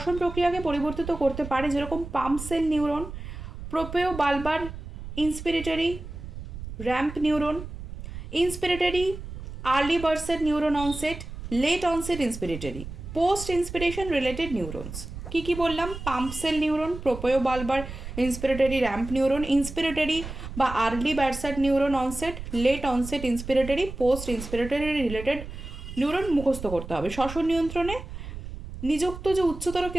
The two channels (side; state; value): right; noise; rumble, 10 dB below the sound